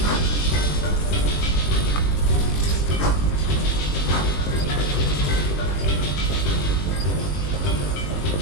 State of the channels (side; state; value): right; late; 21 ms